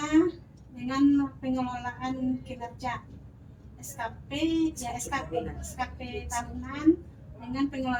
dengan pengelolaan kinerja SKP, SKP tahunan dengan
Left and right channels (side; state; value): both; identical; correlation 1.00